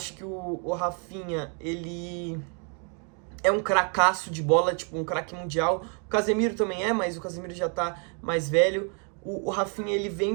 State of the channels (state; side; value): quieter; left; 39.6 dB